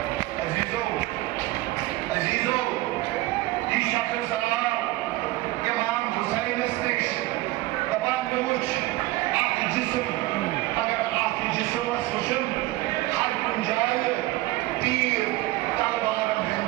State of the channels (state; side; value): quieter; left; 18.7 dB